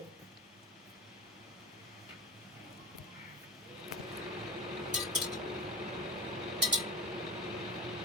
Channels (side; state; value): both; normal; correlation 0.29